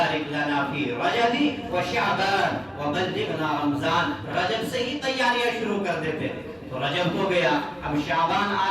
لنا فی رجب و شعبان وبلغنا رمضان، رجب سے ہی تیاریاں شروع کر دیتے ہیں، تو رجب ہو گیا، اب شعبان آ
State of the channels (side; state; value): both; identical; correlation 1.00